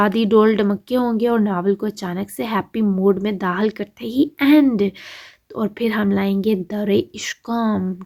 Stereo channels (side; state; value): both; identical; correlation 1.00